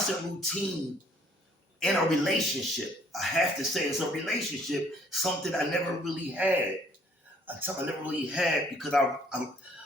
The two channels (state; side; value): normal; both; correlation 0.61